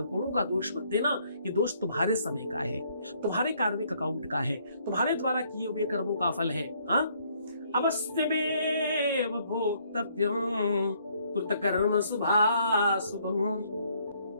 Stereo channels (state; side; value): inverted; both; correlation -0.67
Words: का दोष मत देना। ये दोष तुम्हारे समय का है, तुम्हारे कार्मिक अकाउंट का है, तुम्हारे द्वारा किए हुए कर्मों का फल है। अवश्यमेव भोक्तव्यं कृतकर्म शुभाशुभम्।